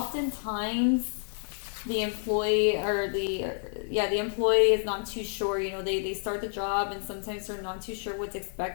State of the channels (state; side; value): silent; right; digital silence